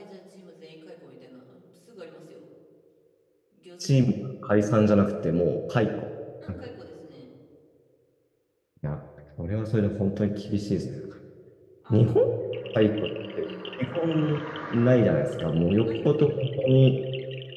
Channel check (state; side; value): identical; both; correlation 1.00